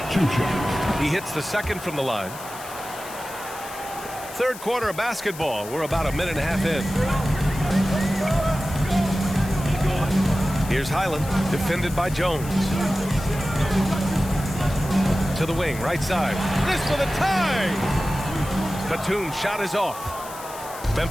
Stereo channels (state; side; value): noise; left; hiss, 15 dB below the sound